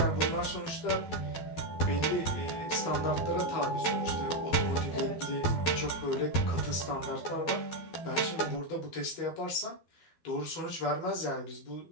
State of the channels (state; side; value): late; right; 12 ms